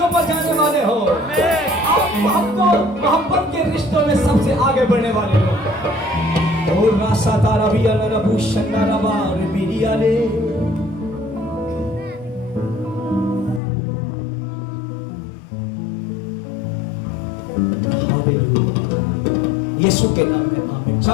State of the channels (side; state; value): right; drops out; at 13.6 s